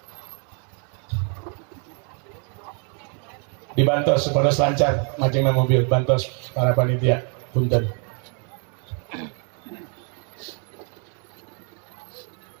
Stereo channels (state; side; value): quieter; left; 39.6 dB